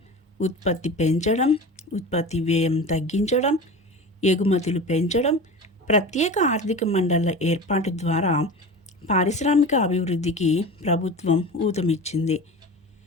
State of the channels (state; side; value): normal; both; correlation 0.32